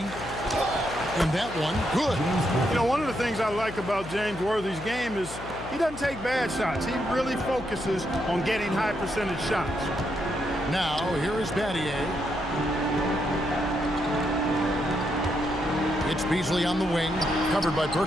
that one, good. You know, one of the things I like about James Worthy's game is he doesn't take bad shots. He really focuses on getting high percentage shots. Now, here is Battier. It's Beasley on the wing, covered by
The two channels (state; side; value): noise; left; hum, 13 dB below the sound